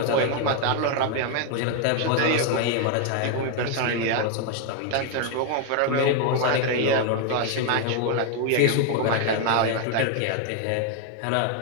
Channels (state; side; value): different; both; correlation 0.01